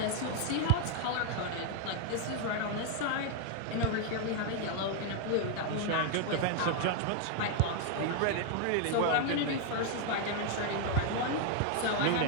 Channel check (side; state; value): both; different; correlation 0.00